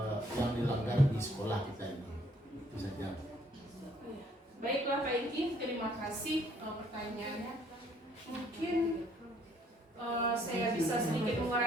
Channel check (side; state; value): both; normal; correlation 0.64